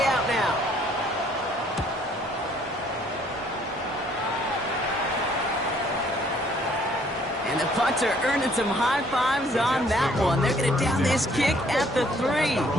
out now. And the punter earning some high fives on that one. They're going to down this kick at the 3.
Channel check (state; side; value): normal; both; correlation 0.62